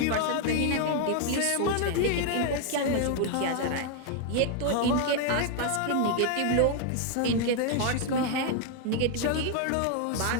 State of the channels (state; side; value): different; both; correlation 0.00